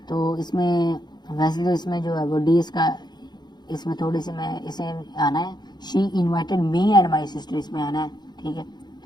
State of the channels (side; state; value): right; late; 0.21 ms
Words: تو اس میں ویسے تو اس میں جو ہے وہ ڈی اس کا اس میں تھوڑی سی میں اسے آنا ہے she invited me and my sister اس میں آنا ہے. ٹھیک ہے,